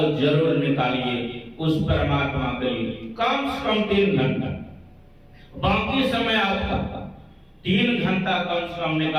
जरूर निकालिए उस परमात्मा के लिए, कम से कम 3 घंटा। बाकी समय आपका 3 घंटा कम से कम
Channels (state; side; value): identical; both; correlation 1.00